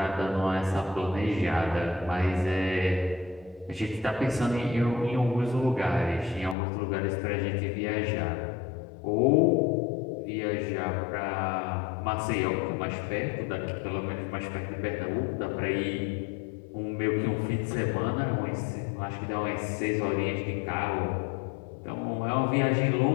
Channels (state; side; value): drops out; right; at 6.6 s